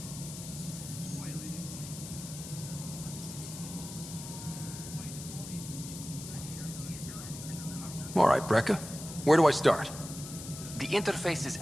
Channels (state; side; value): noise; left; hiss, 11 dB below the sound